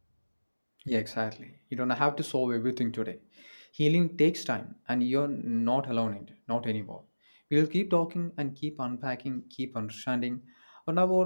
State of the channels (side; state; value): both; inverted; correlation -1.00